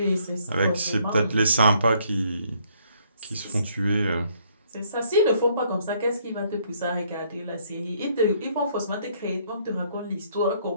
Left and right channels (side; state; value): both; inverted; correlation -0.66